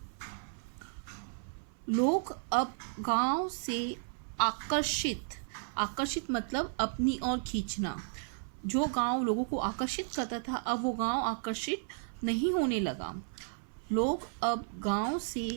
लोग अब गांव से आकर्षित मतलब अपनी ओर खींचना। जो गांव लोगों को आकर्षित करता था अब वो गांव आकर्षित नहीं होने लगा। लोग अब गांव से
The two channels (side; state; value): left; silent; 55 dB below the other